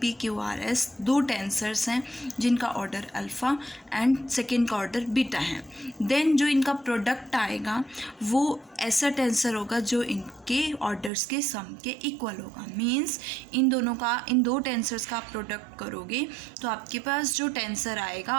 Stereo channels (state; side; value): drops out; left; at 11.1 s